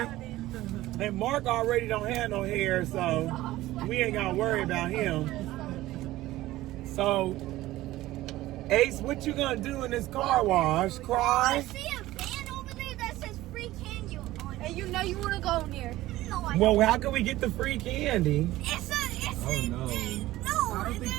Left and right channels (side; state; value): left; quieter; 16.5 dB